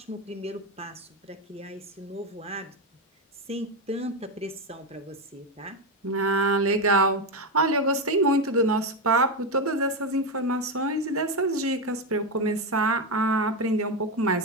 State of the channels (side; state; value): both; normal; correlation 0.10